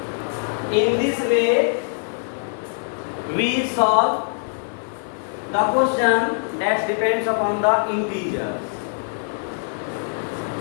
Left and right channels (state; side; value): silent; right; 64 dB below the other